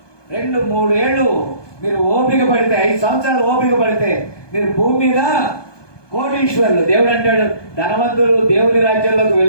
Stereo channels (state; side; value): late; right; 1.2 ms